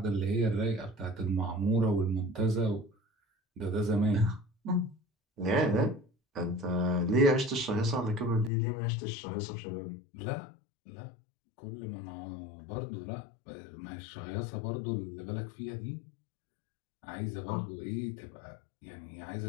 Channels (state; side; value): drops out; right; at 8.5 s